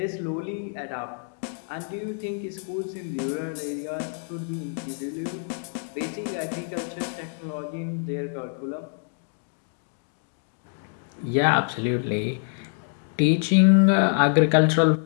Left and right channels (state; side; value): silent; right; 61 dB below the other